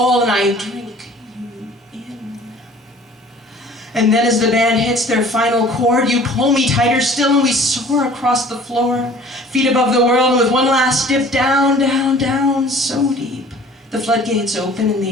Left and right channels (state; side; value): normal; both; correlation 0.49